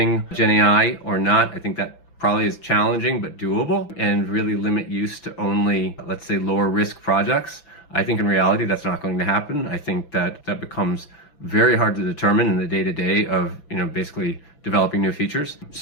GenAI or not. I think that probably is challenging but doable, and really limit use to only, let's say, lower risk projects. I think in reality that's not going to happen. I think that becomes very hard to determine in the day-to-day of basically developing new features.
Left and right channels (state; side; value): late; right; 5.9 ms